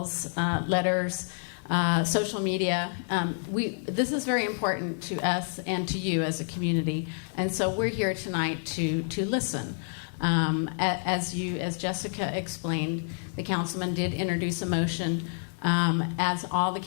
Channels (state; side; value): silent; right; 59 dB below the other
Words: letters, social media, this is very important to us and to you as a community. And so we're here tonight to listen. As Jessica explained, the councilman did introduce a motion, as all the